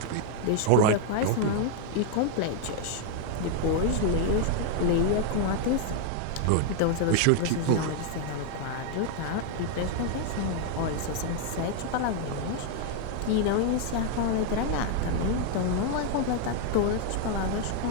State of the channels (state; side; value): different; both; correlation 0.00